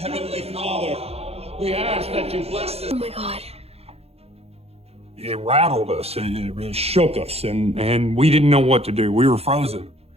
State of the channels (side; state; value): left; late; 0.29 ms